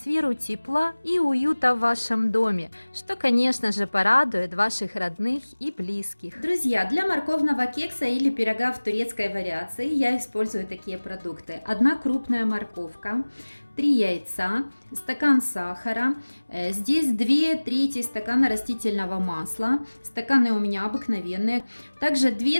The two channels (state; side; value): inverted; both; correlation -1.00